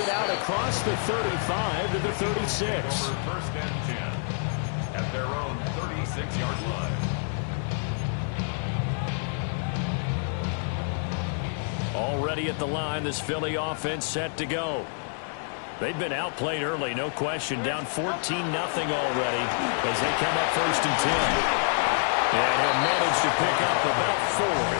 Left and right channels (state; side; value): silent; right; 60 dB below the other